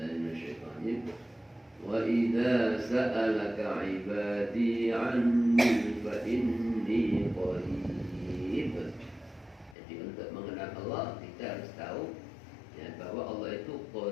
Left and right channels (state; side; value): drops out; right; at 9.8 s